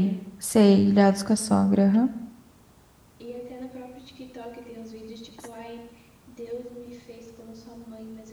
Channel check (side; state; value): both; identical; correlation 1.00